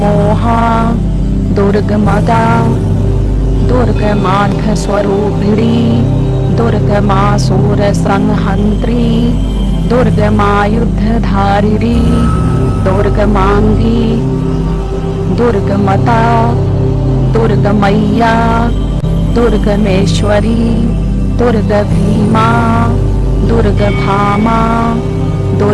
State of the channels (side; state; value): both; identical; correlation 1.00